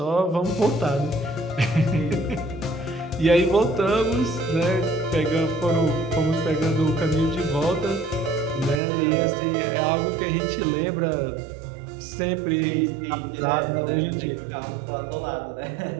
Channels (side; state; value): left; drops out; at 8.8 s